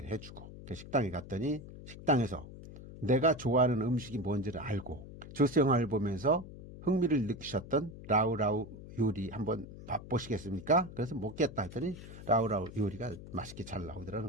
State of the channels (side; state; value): left; noise; hum, 14 dB below the sound